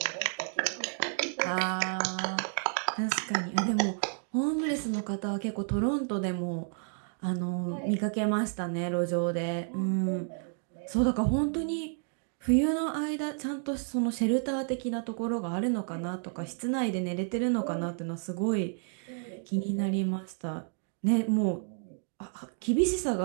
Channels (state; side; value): silent; left; 57 dB below the other